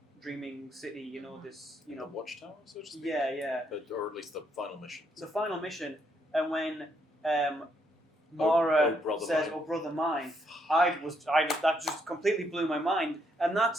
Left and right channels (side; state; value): both; normal; correlation 0.74